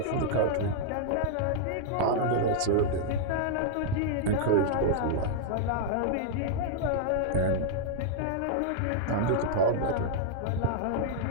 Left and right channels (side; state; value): both; different; correlation -0.01